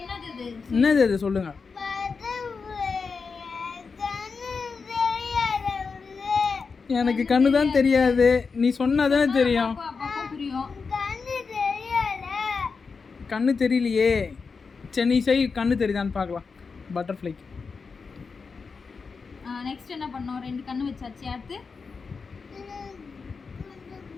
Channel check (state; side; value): quieter; right; 5.0 dB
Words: இது? என்னது அது சொல்லுங்கள். எனக்கு கண்ணு தான் தெரியாது, நீ சொன்னா தானே தெரியும். அப்பா புரியும். கண்ணு தெரியலையே. சரி நீ செய், கண்ணு தெரியுதான்னு பார்க்கலாம். பட்டர்ஃப்ளைக்கு நெக்ஸ்ட் என்ன பண்ணோம்? 2 கண்ணு வச்சாச்சு. அடுத்து